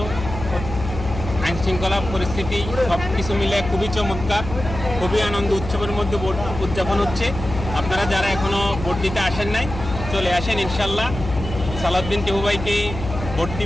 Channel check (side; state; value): left; noise; hum, 8 dB below the sound